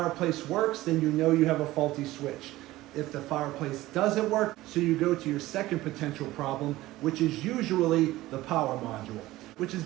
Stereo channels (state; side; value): quieter; left; 17.2 dB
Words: works, then you know you have a faulty switch. If the fireplace doesn't work, so you go to your second potential problem, which is usually the power module, which is